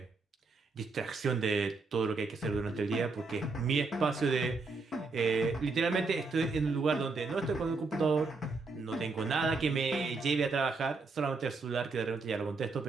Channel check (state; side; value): quieter; left; 4.0 dB